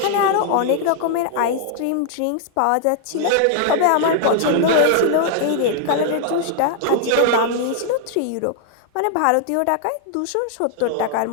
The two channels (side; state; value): both; different; correlation 0.00